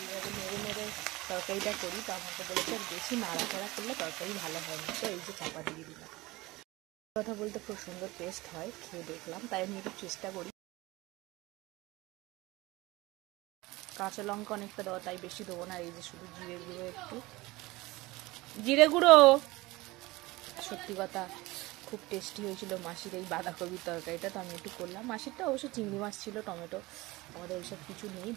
নেড়ে নেড়ে তরকারিটা করি, তো আমাকে বলেছে আর বেশি নাড়াচাড়া করলে তরকারি ভালো হয় না, তো এই যে চাপা দিয়ে দিলাম। কথা বলতে খুব সুন্দর টেস্ট হয়, খেয়ে দেখলাম, তাই আমি একটু চেষ্টা করি। কাঁচা লঙ্কা অনেকটা দেওয়া, তাই বেশি দেবো না, এই যে শুধু জিরে গুঁড়ো, একটু জিরে গুঁড়ো। সত্যি কথা খুব টেস্টি হয়েছিল মাসির এই বাঁধাকপির তরকারিটা, তো আমি একটু করলাম। মাসিরটা অবশ্য চিংড়ি মাছ ছিল, টমেটো, আমাদের ওইসব কিছু নেই,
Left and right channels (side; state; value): left; quieter; 20.8 dB